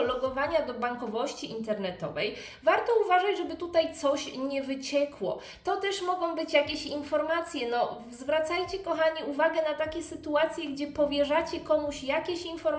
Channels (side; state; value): both; identical; correlation 1.00